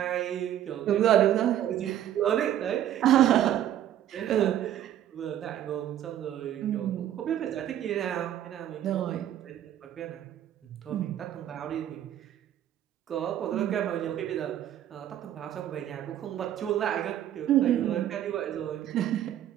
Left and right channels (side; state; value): left; quieter; 11.4 dB